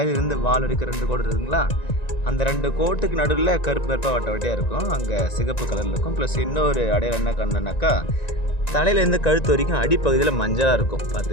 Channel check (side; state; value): right; late; 1.9 ms